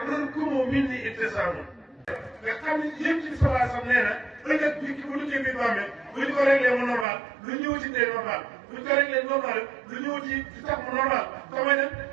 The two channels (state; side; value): drops out; left; at 7.1 s